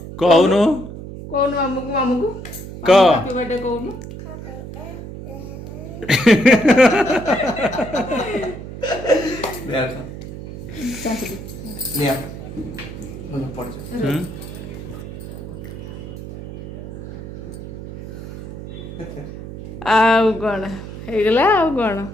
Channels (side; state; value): right; noise; hum, 10 dB below the sound